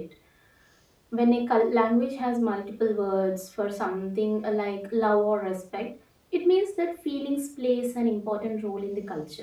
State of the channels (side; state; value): both; identical; correlation 1.00